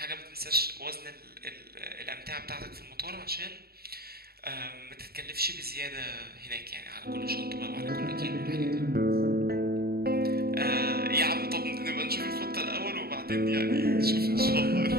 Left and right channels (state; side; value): late; left; 0.45 ms